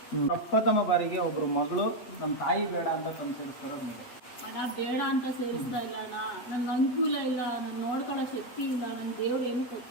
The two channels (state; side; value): late; right; 8.1 ms